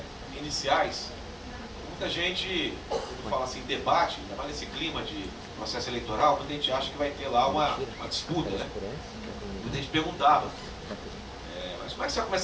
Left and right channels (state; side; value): identical; both; correlation 1.00